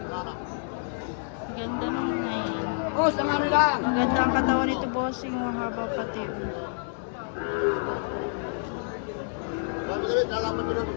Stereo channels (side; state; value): right; silent; digital silence